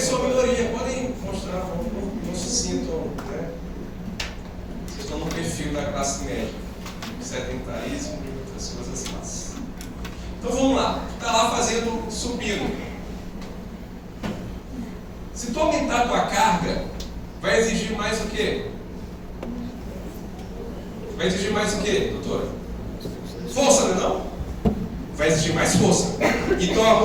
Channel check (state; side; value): identical; both; correlation 1.00